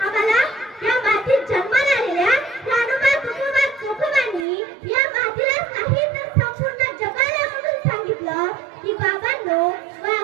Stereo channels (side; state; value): left; drops out; at 4.5 s